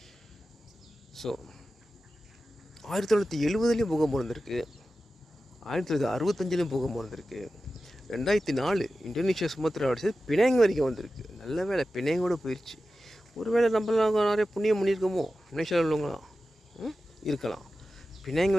ஸோ 1970லேயும் பூகம்பம் இருந்திருக்கு, 1965லேயும் பூகம்பம் இருந்திருக்கு, 2004 இந்தோனேஷியா சுமத்ரா அடிச்சது பினாங் வரைக்கும் வந்திருக்கு. நல்ல வேலை பினாங்கோடு போயிடுச்சு. ஒரு வேளை நம்மளாம் நிறைய புண்ணியம் பண்ணியிருக்கோமோ, மலேசியாவில் உள்ளவங்களாம் இருக்கலாம். பினாங்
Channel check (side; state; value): both; normal; correlation 0.93